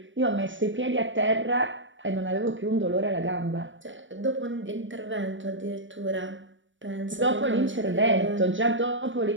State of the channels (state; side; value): late; left; 0.56 ms